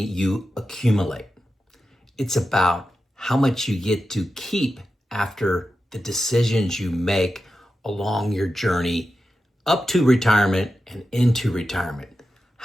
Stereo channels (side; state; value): both; normal; correlation 0.90